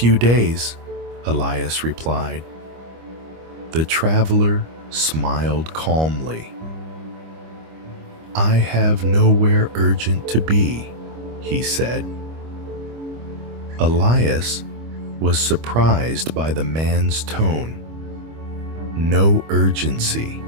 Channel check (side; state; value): left; late; 25 ms